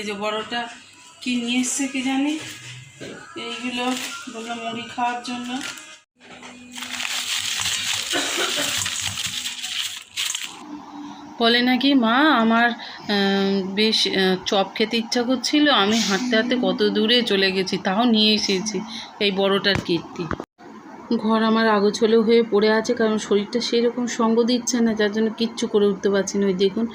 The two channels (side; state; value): both; identical; correlation 1.00